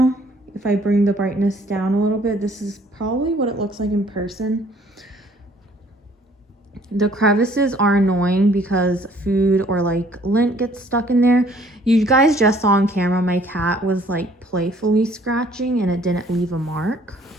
If I bring the brightness down a little bit, this is probably what it looks like in person. The crevices are annoying because food or like lint gets stuck in there. You guys just saw on camera my cat was like playfully scratching and it didn't leave a mark.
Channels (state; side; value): normal; both; correlation 0.59